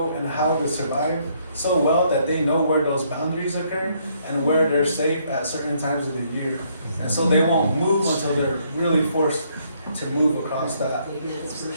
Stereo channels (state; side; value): inverted; both; correlation -0.69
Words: and how to survive so well that they know where those boundaries occur and where they're safe at certain times of the year. And so they won't move until they're really forced to move across that